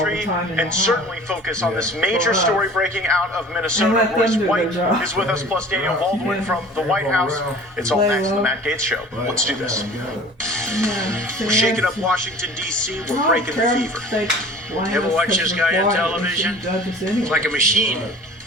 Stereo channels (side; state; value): both; normal; correlation 0.44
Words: and certainly focus on this major story breaking out of Minnesota. Royce White is with us, plus Daniel Baldwin from the White House. It's all next on the Matt Gaetz Show. Let's do this. We're shaking up Washington, D.C. We're breaking the fever. Ever watch this guy on television? He's like a machine.